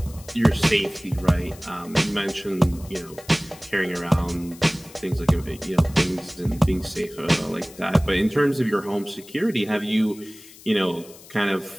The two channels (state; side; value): noise; left; hiss, 20 dB below the sound